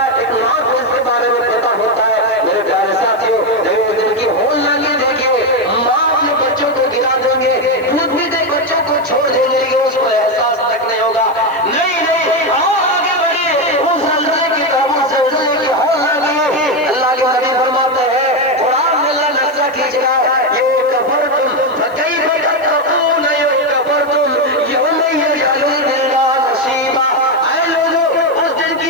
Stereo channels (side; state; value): right; noise; hiss, 28 dB below the sound